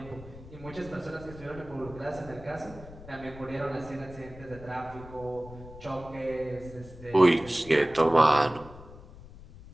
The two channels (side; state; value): left; noise; rumble, 17 dB below the sound